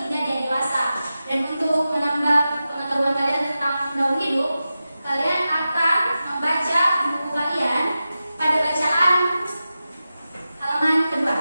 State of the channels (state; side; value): inverted; both; correlation -0.93